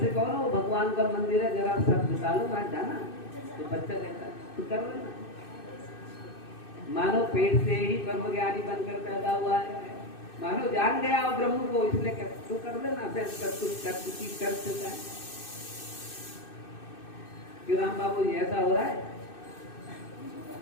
से कहो ना वो भगवान का मंदिर है, जरा सब झुका लो वहां जाना, तो बच्चा कहता तू कर लेना। मानो पेट से ही ब्रह्म ज्ञानी बनकर पैदा हुआ है, मानो जान गया और ब्रह्म को, इसलिए कहता तू कर लेना, फिर कर चुका है। क्यों राम बाबू जी ऐसा हो रहा है?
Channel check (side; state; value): right; late; 2.6 ms